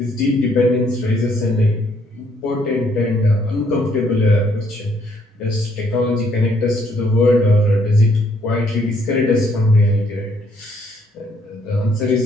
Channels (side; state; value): both; normal; correlation 0.68